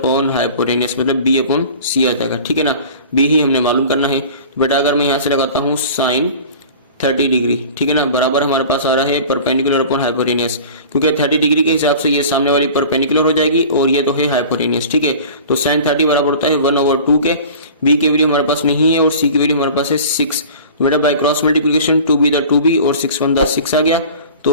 हाइपोटेनियस, मतलब बी अपॉन सी आ जाएगा। ठीक है ना, बी ही हमने मालूम करना है। तो बेटा अगर मैं यहाँ से लगाता हूँ साइन 30 डिग्री, ठीक है ना, बराबर हमारे पास आ रहा है परपेंडिकुलर अपॉन हाइपोटेनियस, क्योंकि 30 डिग्री के हिसाब से ये सामने वाली परपेंडिकुलर हो जाएगी और ये तो है हाइपोटेनियस। ठीक है, तो साइन 30 बराबर होता है 1/2 के। बी की वैल्यू हमारे पास नहीं है और सी की वैल्यू हमारे पास है 6। तो बेटा by cross multiplication 2b the 2b और 6 1 द 6 आ गया।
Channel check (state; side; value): inverted; both; correlation -0.41